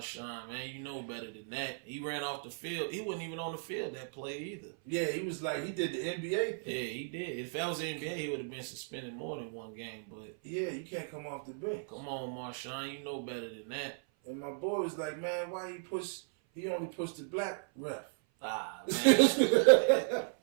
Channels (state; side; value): silent; left; 54 dB below the other